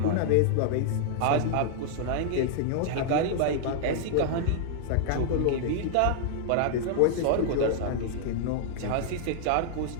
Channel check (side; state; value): both; different; correlation -0.01